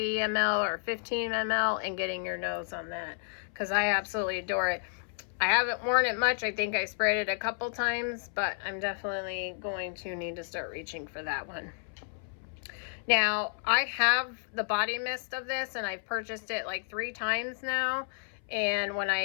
ml or 15 ml and getting your nose on that, because I absolutely adore it. I haven't worn it much. I think I sprayed it a couple times, but I'm definitely going to need to start reaching for that one. Now, I have the body mist of this, and I've purchased it like 3 times now. And when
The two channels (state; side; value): silent; right; 57 dB below the other